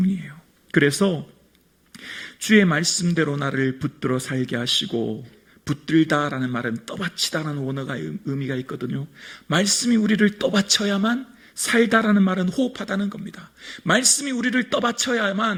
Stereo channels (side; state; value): both; identical; correlation 1.00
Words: 그래서 주의 말씀대로 나를 붙들어 살게 하시고, 붙들다라는 말은 떠받치다라는 원어가 의미가 있거든요. 말씀이 우리를 떠받쳐야만 살다라는 말은 호흡하다는 겁니다. 말씀이 우리를